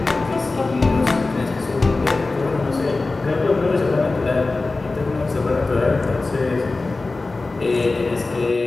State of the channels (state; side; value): quieter; right; 3.5 dB